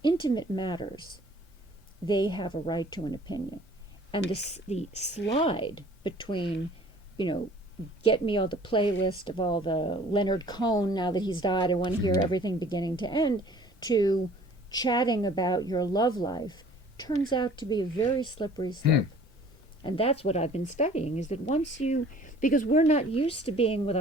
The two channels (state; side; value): normal; both; correlation 0.51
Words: intimate matters, they have a right to an opinion. And the slide between, you know, get me all the playlist of all the Leonard Cohen, now that he's died, I want to hear everything beginning to end, to chatting about your love life, turns out to be a very slippery slope. And that's what I've been studying, is that once you, because we're not used to being with